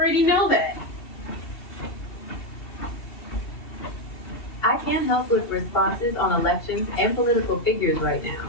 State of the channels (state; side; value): late; right; 2.7 ms